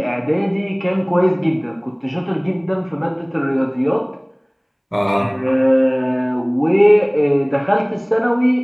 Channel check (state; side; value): identical; both; correlation 1.00